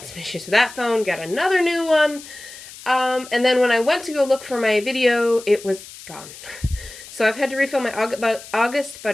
some issues with that phone, got another new one. And then when I went to go look for my video, it was gone. So I've had to refilm my August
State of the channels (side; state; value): left; noise; hiss, 16 dB below the sound